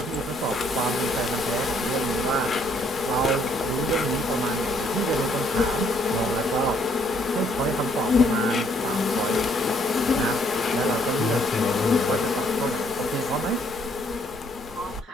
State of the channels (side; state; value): both; normal; correlation 0.67